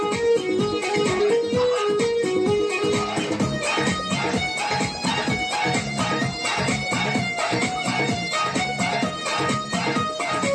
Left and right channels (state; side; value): identical; both; correlation 1.00